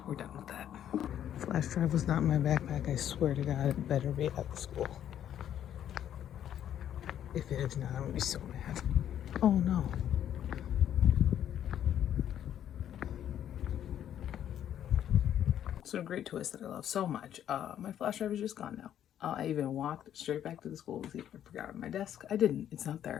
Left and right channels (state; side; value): quieter; right; 10.4 dB